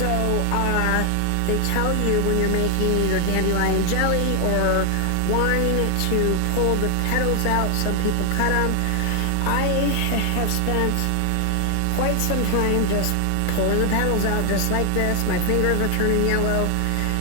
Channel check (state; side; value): different; both; correlation 0.01